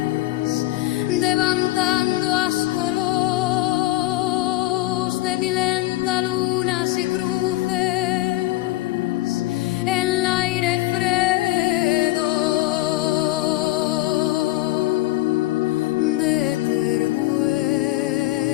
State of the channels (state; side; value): quieter; right; 17.7 dB